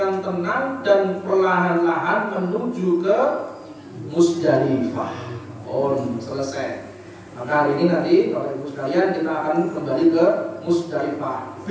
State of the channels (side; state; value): both; identical; correlation 1.00